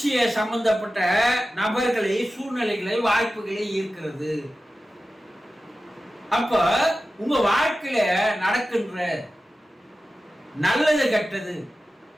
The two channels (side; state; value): both; normal; correlation 0.94